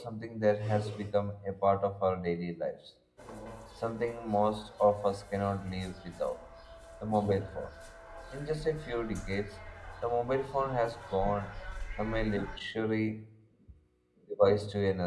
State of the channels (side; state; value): both; identical; correlation 1.00